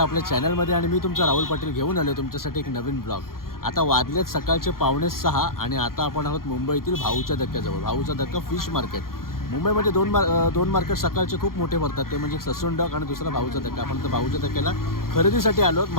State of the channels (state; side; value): late; right; 0.92 ms